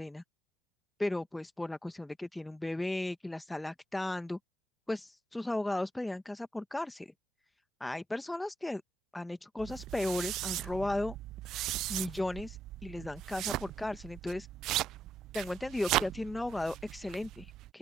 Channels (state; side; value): normal; both; correlation 0.81